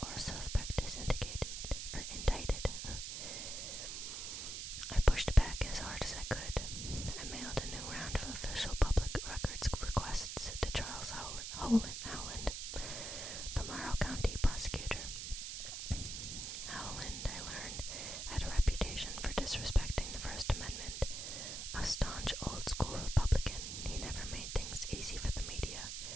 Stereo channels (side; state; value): right; noise; hiss, 5 dB below the sound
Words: or a suspect is indicted. I pushed back as hard as I could. I mailed a new round of official public records requests to Charles Howland, the Morrow County prosecutor. Howland, I learned, had a reputation for disrespecting the First Amendment. A staunch old-school Republican, he never made things easy for the media.